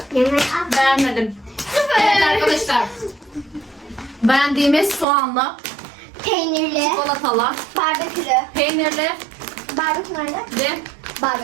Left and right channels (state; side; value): drops out; left; at 5.1 s